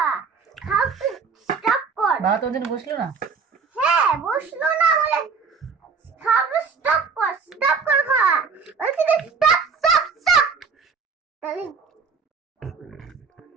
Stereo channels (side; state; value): left; quieter; 5.4 dB